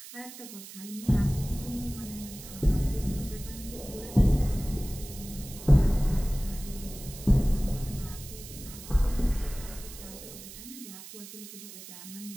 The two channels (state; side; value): noise; right; hiss, 14 dB below the sound